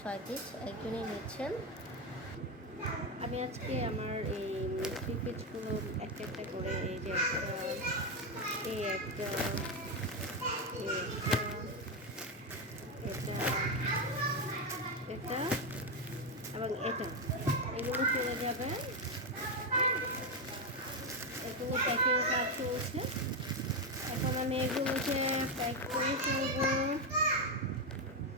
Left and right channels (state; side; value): normal; both; correlation 0.08